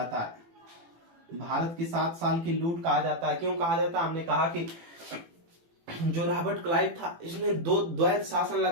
है। भारत की 7 साल की लूट कहा जाता है। क्यों कहा जाता है? हमने कहा कि जो रॉबर्ट क्लाइव था इसने द्वैत शासन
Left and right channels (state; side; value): late; left; 18 ms